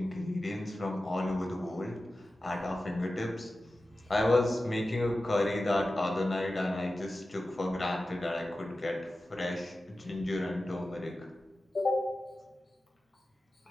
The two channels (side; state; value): both; normal; correlation 0.94